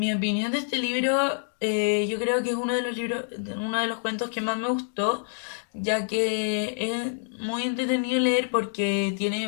opinión de este libro, yo creo que es uno de los cuentos que más me gustó, ya que es muy entretenido leer porque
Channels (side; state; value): right; silent; digital silence